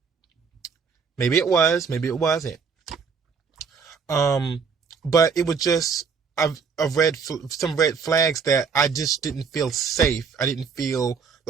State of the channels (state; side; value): quieter; left; 5.8 dB